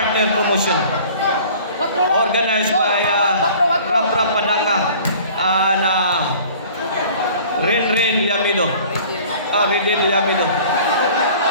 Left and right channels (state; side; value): inverted; both; correlation -0.48